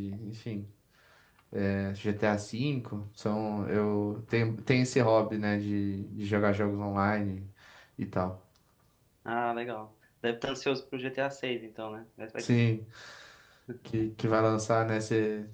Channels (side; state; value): both; identical; correlation 1.00